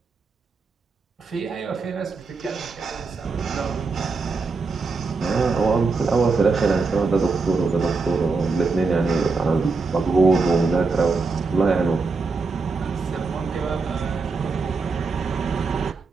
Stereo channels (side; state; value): left; quieter; 4.2 dB